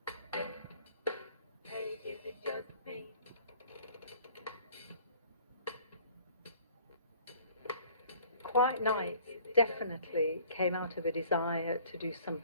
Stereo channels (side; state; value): both; inverted; correlation -0.53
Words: Hey, is it just me? Quiet Nights definitely came out of a desire to do